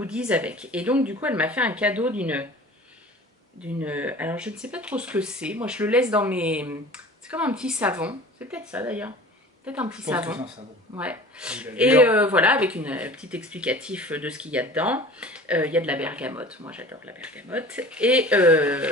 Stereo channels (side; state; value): both; normal; correlation 0.42